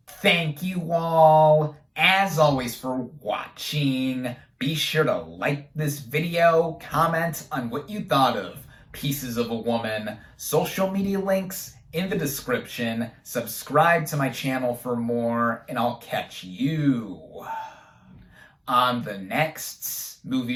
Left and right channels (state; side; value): identical; both; correlation 1.00